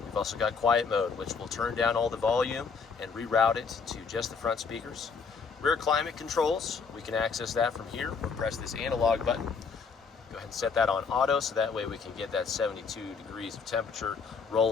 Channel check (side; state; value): right; quieter; 5.4 dB